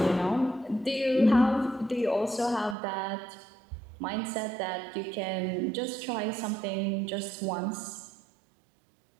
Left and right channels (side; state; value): left; drops out; at 2.8 s